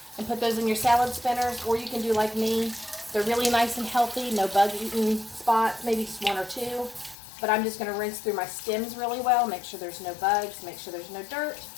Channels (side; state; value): right; drops out; at 7.2 s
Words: and put those in your salad spinners, or you can do like me. They're really nice and healthy, no bug-eaten spots, maybe just 1 or 2. But I'm just going to rinse through my stems really well, make sure there's no bugs, make sure there's no dirt.